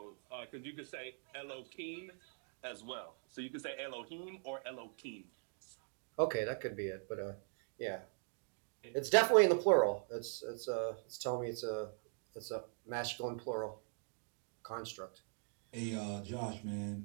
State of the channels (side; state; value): left; silent; 50 dB below the other